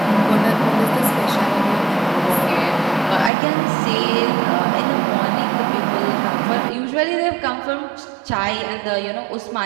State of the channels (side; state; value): left; drops out; at 3.3 s